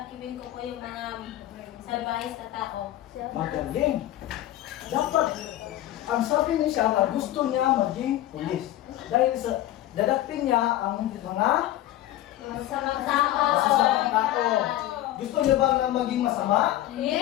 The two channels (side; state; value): right; quieter; 14.2 dB